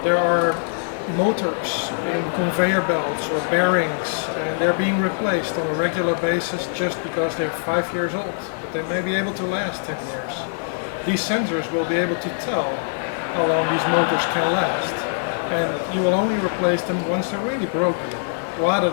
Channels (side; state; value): right; silent; digital silence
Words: There are motors in conveyor belts or bearings, and they're being replaced on a regular basis just because they're 5 years old, but they may be able to last 10 years. These sensors will be able to tell how long these motors can last, and you will only replace them once they're really broken, rather